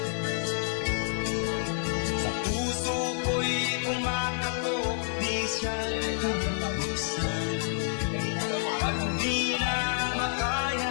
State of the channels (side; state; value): right; silent; 59 dB below the other